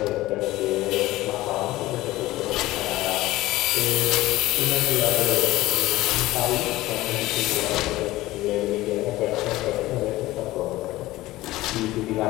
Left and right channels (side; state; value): right; quieter; 17.5 dB